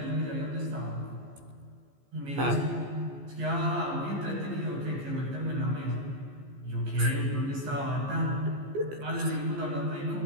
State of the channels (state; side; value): late; left; 15 ms